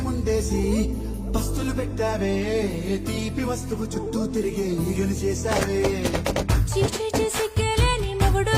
ముందేసి పస్తులు పెట్టావే తీపి వస్తువు చుట్టూ తిరిగే ఈగలు చేశావే చీచి చిసికెలేని మొగుడు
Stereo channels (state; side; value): identical; both; correlation 1.00